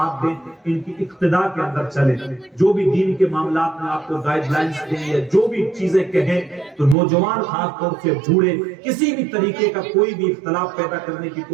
دیں، ان کی اقتداء کے اندر چلیں، جو بھی دین کے معاملات میں آپ کو گائیڈ لائنز دیں یا جو بھی چیزیں کہیں تو نوجوان خاص طور سے بوڑھے کسی بھی طریقے کا کوئی بھی اختلاف پیدا کرنے کی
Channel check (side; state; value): left; drops out; at 7.0 s